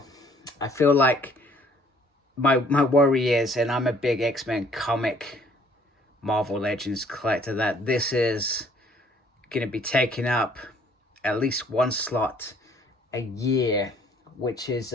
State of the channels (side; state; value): both; normal; correlation 0.60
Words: I feel like my worry is, and I'm a big X-Men comic Marvel Legends collector, that this is going to be taking up at least one slot a year, which is